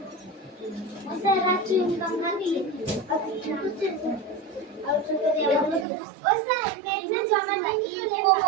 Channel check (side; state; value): left; drops out; at 5.9 s